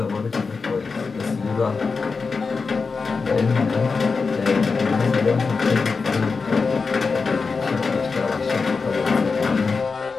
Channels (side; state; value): right; quieter; 4.7 dB